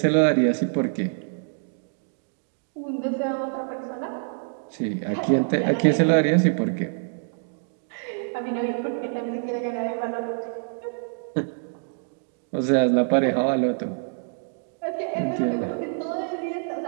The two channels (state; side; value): silent; left; digital silence